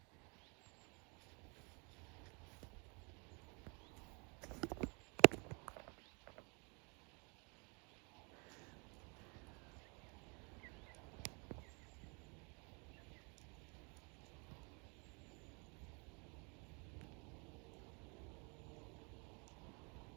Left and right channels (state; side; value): quieter; left; 33.2 dB